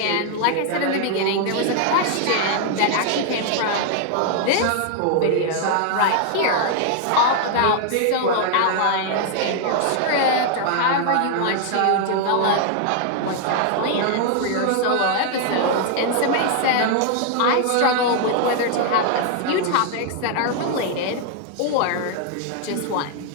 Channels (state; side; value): different; both; correlation 0.00